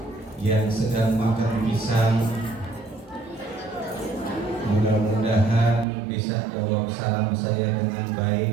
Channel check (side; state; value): left; drops out; at 5.9 s